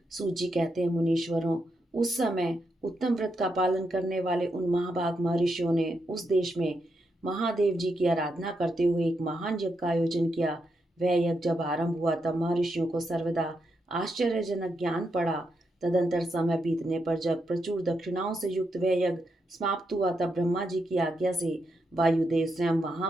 सूची कहते हैं, मुनीश्वरों, उस समय उत्तम व्रत का पालन करने वाले उन महाभाग महर्षियों ने उस देश में महादेव जी की आराधना करते हुए एक महान यज्ञ का आयोजन किया। वह यज्ञ जब आरंभ हुआ तब महर्षियों को सर्वदा आश्चर्यजनक ज्ञान पड़ा। तदंतर समय बीतने पर जब प्रचुर दक्षिणाओं से युक्त वह यज्ञ समाप्त हुआ तब ब्रह्मा जी की आज्ञा से वायुदेव स्वयं वहां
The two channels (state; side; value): normal; both; correlation 0.83